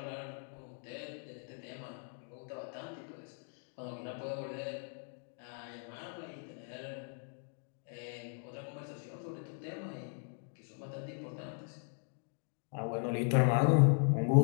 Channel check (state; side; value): silent; right; 53 dB below the other